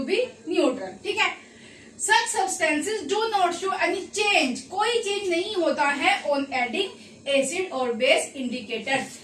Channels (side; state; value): both; identical; correlation 1.00